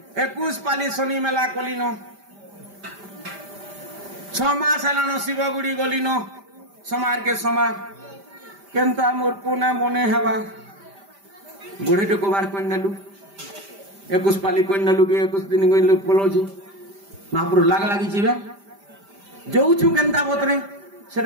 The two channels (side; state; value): left; late; 5.1 ms